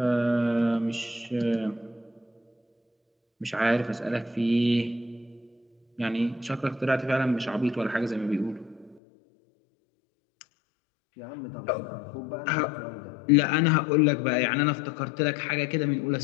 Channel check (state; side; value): drops out; right; at 9.0 s